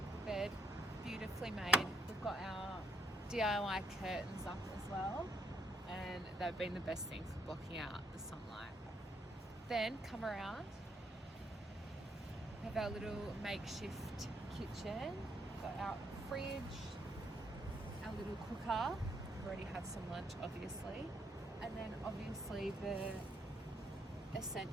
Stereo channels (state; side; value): normal; both; correlation 0.72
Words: Bed. Beautifully made. We've got our DIY curtains up as well, and they've been the best thing for blocking out the sunlight. Then come around, have our little makeshift kitchen, got our fridge, our little cooker. We've already had some lunch obviously, and then obviously the